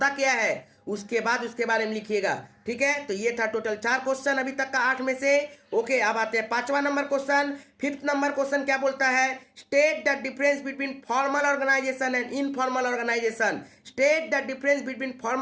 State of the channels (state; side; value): identical; both; correlation 1.00